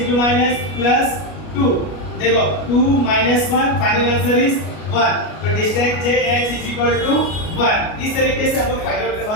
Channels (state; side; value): late; right; 33 ms